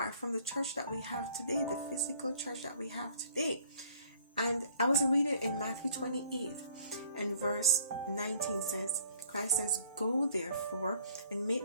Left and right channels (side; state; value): both; inverted; correlation -0.58